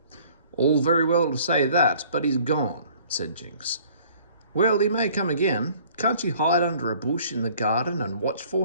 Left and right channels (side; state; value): both; inverted; correlation -0.54